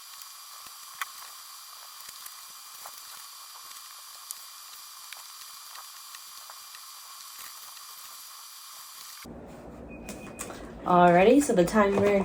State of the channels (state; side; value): identical; both; correlation 1.00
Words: Alrighty, so the timer